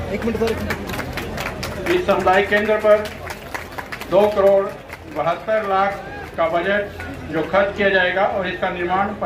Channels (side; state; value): both; identical; correlation 1.00